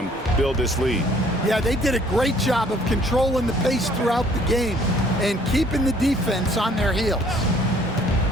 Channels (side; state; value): both; normal; correlation 0.59